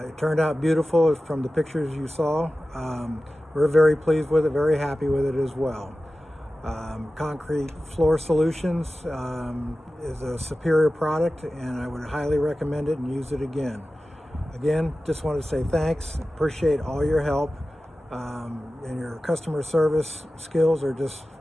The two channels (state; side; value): normal; both; correlation 0.95